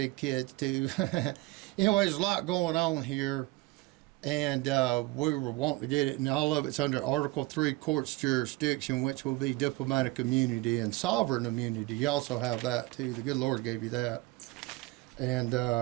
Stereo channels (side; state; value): left; quieter; 21.0 dB